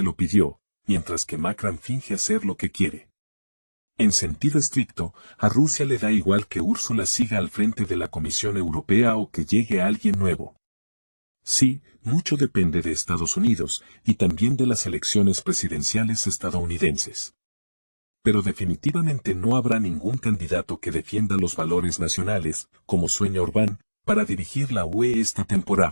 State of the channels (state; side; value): inverted; both; correlation -1.00